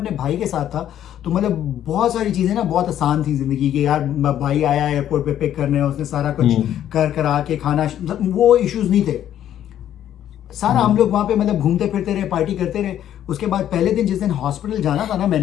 भाई के साथ था तो मतलब बहुत सारी चीज़ें ना बहुत आसान थी ज़िंदगी की। यार भाई आया एयरपोर्ट पे पिक करने, उसने सारा कुछ कर करा के खाना, वो इश्यूज़ नहीं थे। सारा हम लोग वहाँ पे मतलब घूमते फिरते रहे, पार्टी करते रहे। उसके बाद पहले दिन जिस दिन हॉस्पिटल जाना था ना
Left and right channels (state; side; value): quieter; right; 11.0 dB